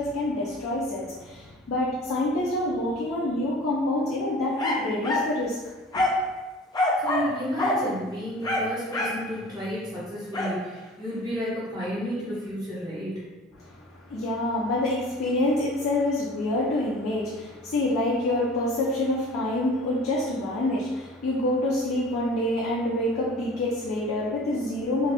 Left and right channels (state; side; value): normal; both; correlation 0.43